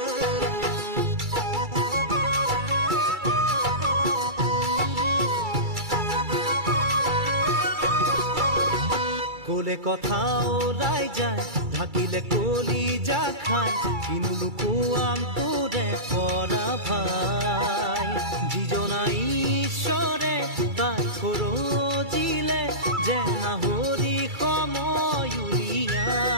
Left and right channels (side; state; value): left; late; 2.3 ms